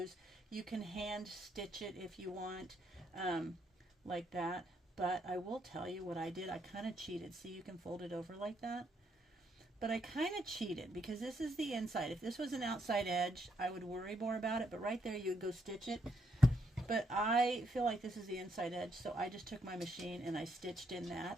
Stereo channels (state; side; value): normal; both; correlation 0.75